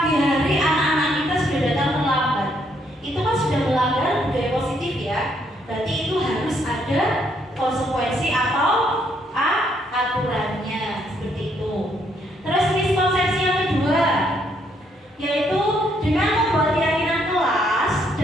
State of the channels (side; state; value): both; normal; correlation 0.71